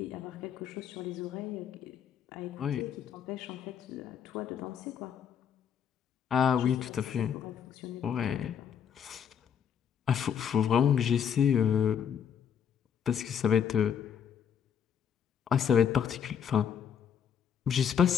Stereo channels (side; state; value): right; quieter; 8.2 dB